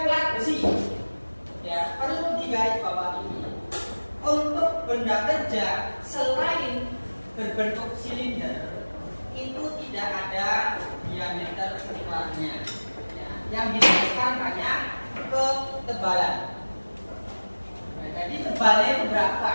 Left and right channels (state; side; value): inverted; both; correlation -1.00